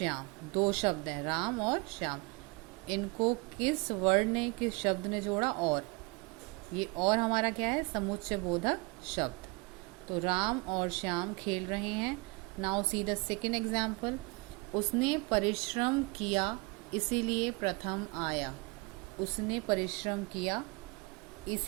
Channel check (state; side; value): quieter; left; 27.9 dB